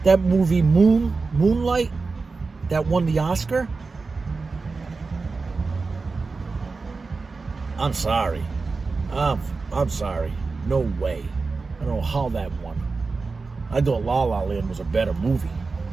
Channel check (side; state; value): left; quieter; 4.2 dB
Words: that movie Moonlight that won the Oscar. I'm sorry. I'm sorry. No way. I don't know how that won. I thought La La Land was a better movie.